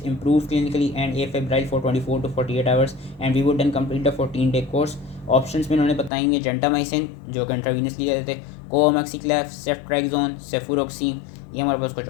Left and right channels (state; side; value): drops out; right; at 6.1 s